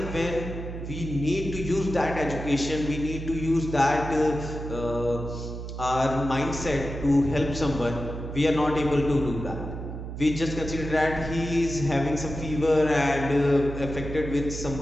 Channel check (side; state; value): right; noise; hum, 8 dB below the sound